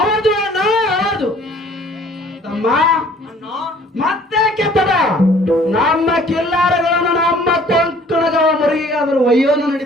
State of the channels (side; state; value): both; normal; correlation 0.54